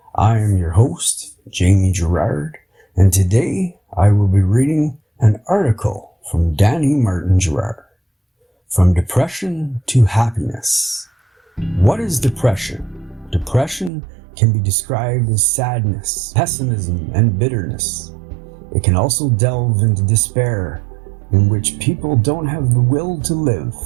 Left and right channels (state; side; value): drops out; left; at 13.9 s